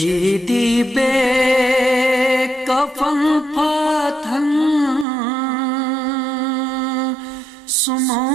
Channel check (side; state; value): left; drops out; at 5.1 s